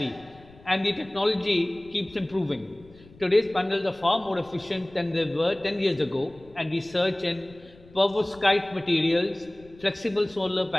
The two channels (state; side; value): noise; left; rumble, 24 dB below the sound